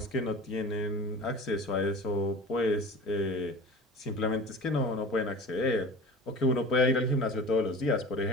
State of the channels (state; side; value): normal; both; correlation 0.38